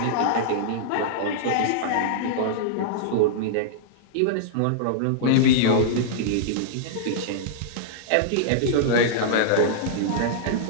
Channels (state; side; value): different; both; correlation -0.02